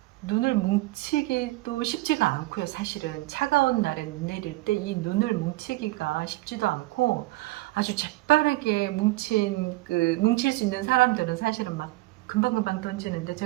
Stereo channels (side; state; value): left; quieter; 20.1 dB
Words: 눈을 뭉치기도 쉽지가 않고요. 사실은 차가운 날에 눈 내릴 때 이 눈을 뭉치기가 쉽지도 않고 아주 재빠르게 뭉칠 수 있는 사람들은 사실은 막 금방금방 던지는데